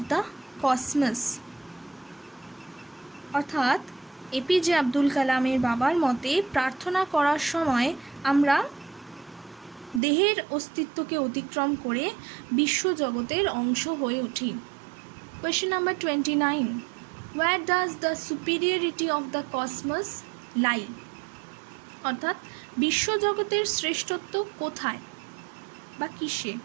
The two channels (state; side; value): drops out; left; at 10.0 s